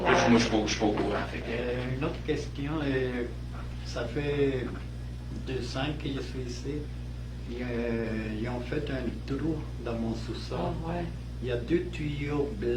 Moi, je suis pas au courant. Fait que, Une autre question. Ça fait 2 ans que je suis ici. Ils ont fait un trou dans mon sous-sol. Ah, ouais. Il y a 2 tuyaux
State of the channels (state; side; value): identical; both; correlation 1.00